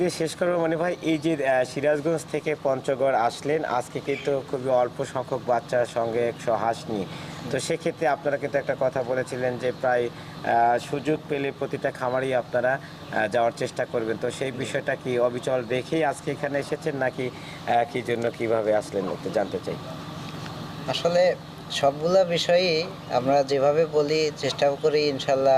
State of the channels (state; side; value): identical; both; correlation 1.00